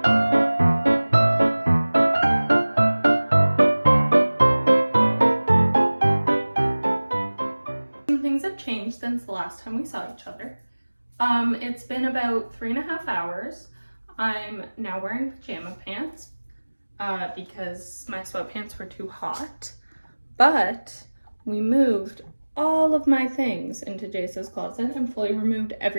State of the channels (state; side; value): inverted; both; correlation -1.00